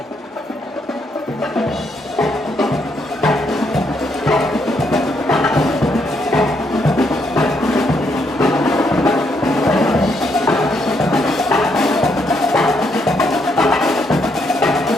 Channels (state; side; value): normal; both; correlation 0.75